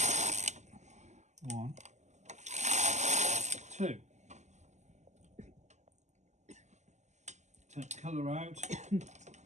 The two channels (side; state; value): left; late; 0.34 ms